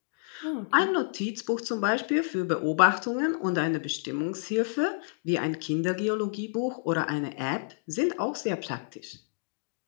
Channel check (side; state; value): right; silent; digital silence